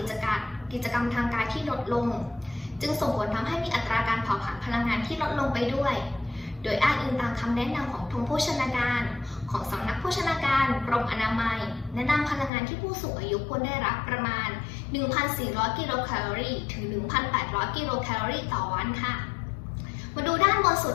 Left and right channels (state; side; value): drops out; right; at 12.5 s